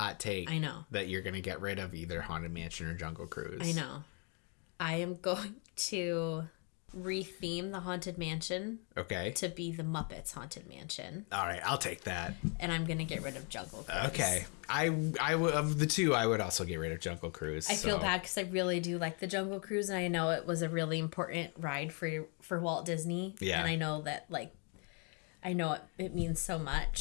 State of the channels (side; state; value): right; quieter; 37.1 dB